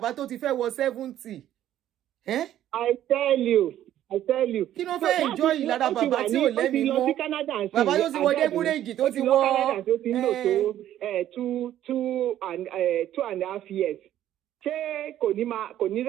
tó ti fẹ́ wọ 70. I tell you. Kí ló fẹ́ enjoy lára bàbá tí ò lẹ́mí mọ́? Bàbá tó ti wọ débúrèjì tó ti wọ. Canada tó ti ń lò tó 2.5 years. Ṣé kò ní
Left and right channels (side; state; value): left; quieter; 12.1 dB